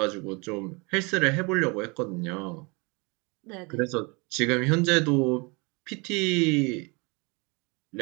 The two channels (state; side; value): quieter; left; 28.9 dB